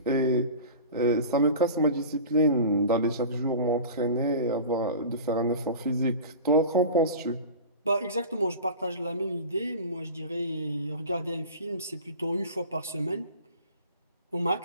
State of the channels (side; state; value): both; inverted; correlation -0.35